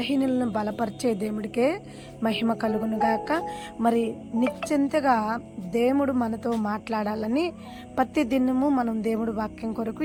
బలపరిచే దేవుడికే మహిమ కలుగునుగాక. మరి నిశ్చింతగా దేవుడు మనతో మాట్లాడాలని ప్రతి దినము మనం దేవుడి వాక్యం కొరకు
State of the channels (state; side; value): identical; both; correlation 1.00